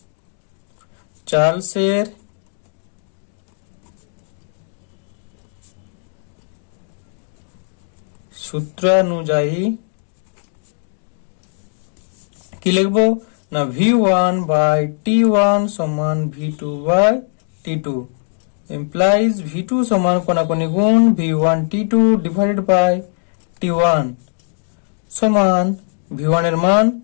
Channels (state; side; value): silent; right; digital silence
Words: চার্লসের সূত্র অনুযায়ী কি লিখবো না V1 by T1 সমান V2 by T2 implies V2 সমান কোনাকুনি গুণ V1 T2 divided by T1 সমান V1 এর মান